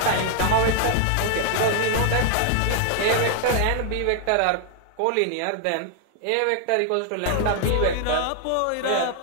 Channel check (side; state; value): both; different; correlation 0.00